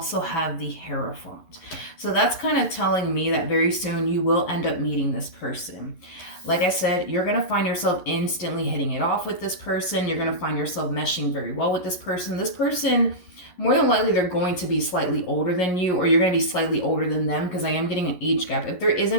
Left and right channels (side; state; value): right; late; 11 ms